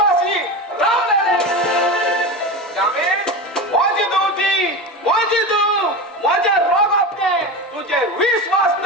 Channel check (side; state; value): both; normal; correlation 0.24